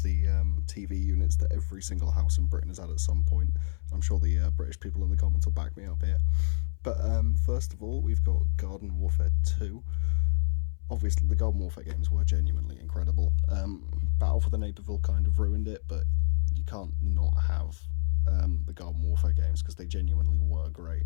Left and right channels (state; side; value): silent; right; 60 dB below the other